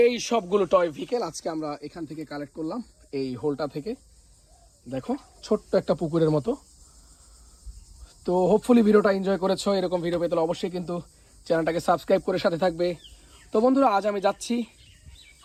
এই সবগুলো টয় ভেহিকেল আজকে আমরা এখান থেকে কালেক্ট করলাম, এই হোলটা থেকে। দেখো ছোট্ট একটা পুকুরের মতো। তো হোপফুলি ভিডিওটা এনজয় করেছো। এরকম ভিডিও পেতে হলে অবশ্যই কিন্তু চ্যানেলটাকে সাবস্ক্রাইব করে সাথে থাকবে। তো বন্ধুরা, আজ আমি যাচ্ছি,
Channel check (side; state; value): both; identical; correlation 1.00